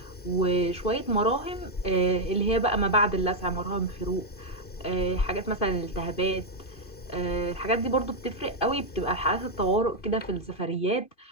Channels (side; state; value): right; late; 2.5 ms